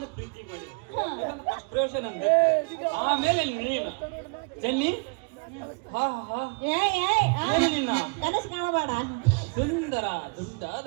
ಪ್ರೀತಿ ಮಾಡಿ ಪ್ರಶ್ನೆ ಅಂದೆ, ಆಮೇಲೆ ನೀನು ಚೆನ್ನಿ. ಏನು ನಿನ್ನ ಕನಸು ಕಾಣಬೇಡ. ಸುಂದರ ದುಂಡಾದ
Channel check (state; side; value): quieter; left; 34.4 dB